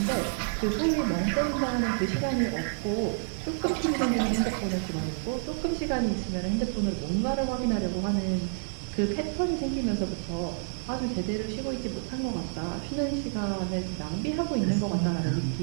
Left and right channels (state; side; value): silent; left; digital silence